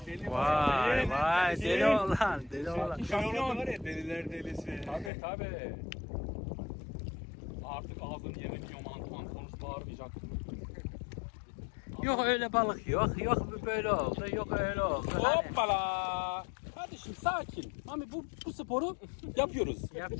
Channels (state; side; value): drops out; right; at 5.1 s